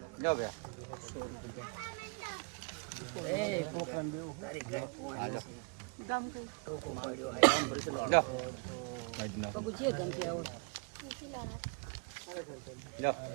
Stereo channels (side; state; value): left; quieter; 34.4 dB